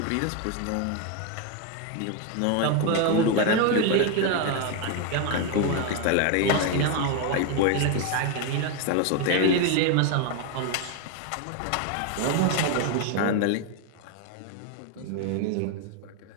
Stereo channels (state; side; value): different; both; correlation 0.01